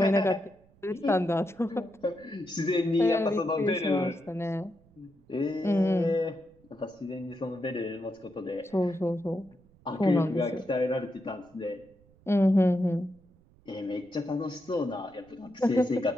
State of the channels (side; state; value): right; noise; rumble, 29 dB below the sound